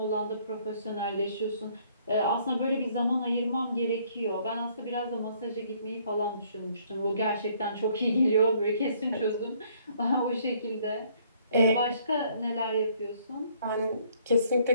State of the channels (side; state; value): both; inverted; correlation -0.63